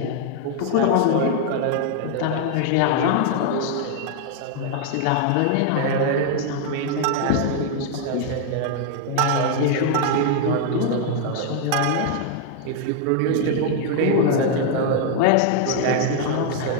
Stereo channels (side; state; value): both; different; correlation 0.00